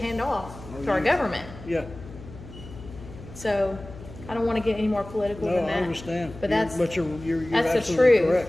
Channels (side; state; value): left; noise; hum, 16 dB below the sound